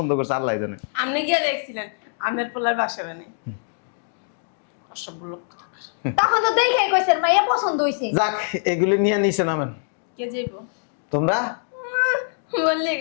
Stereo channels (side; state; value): right; silent; digital silence